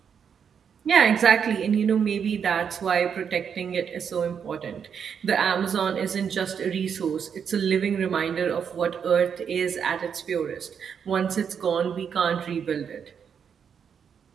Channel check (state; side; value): quieter; left; 7.3 dB